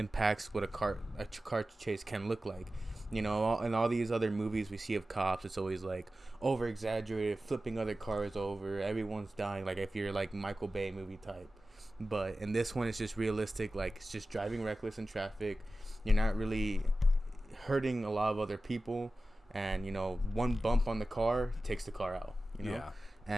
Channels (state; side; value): normal; both; correlation 0.95